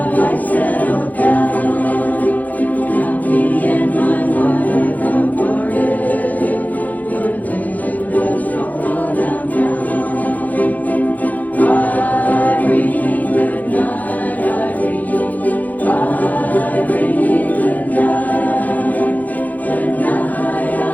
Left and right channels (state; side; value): late; right; 0.080 ms